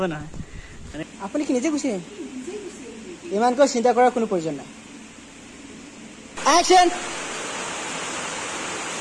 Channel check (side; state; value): both; identical; correlation 1.00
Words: নহয় আপুনি কি নিজে গুচি ইমানকৈ চিন্তা কৰাৰ কোনো প্ৰয়োজন নাই action